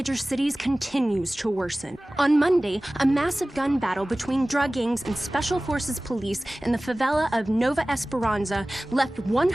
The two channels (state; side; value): normal; both; correlation 0.98